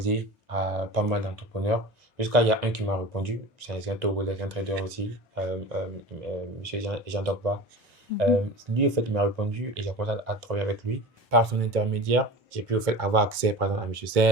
à pas mal d'entrepreneurs. Jusqu'à il y a un qui m'a répondu, c'est un Togolais, un trader aussi, monsieur Jean Dogba. Lui, en fait, il m'a répondu et j'ai commencé à travailler avec lui. Par son intermédiaire, j'ai pu, en fait, avoir accès, par exemple, à monsieur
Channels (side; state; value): both; normal; correlation 0.33